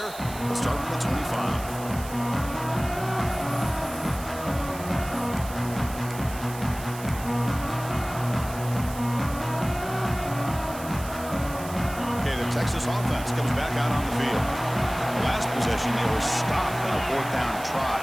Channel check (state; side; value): noise; right; hiss, 14 dB below the sound